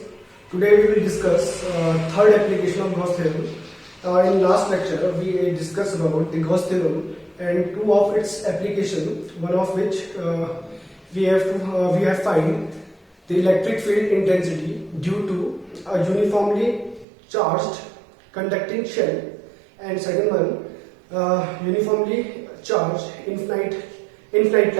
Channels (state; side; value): drops out; left; at 17.1 s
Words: Today we will discuss third application of Gauss theorem. In last lecture, we discussed about the Gauss theorem and two of its application. One of which we have find the electric field intensity due to a uniformly charged conducting shell, and second one uniformly charged infinite